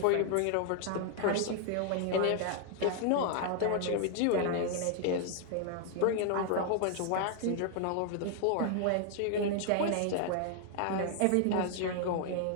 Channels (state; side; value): different; both; correlation 0.00